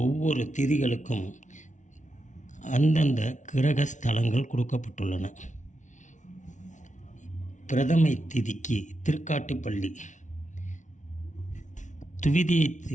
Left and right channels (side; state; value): right; late; 0.36 ms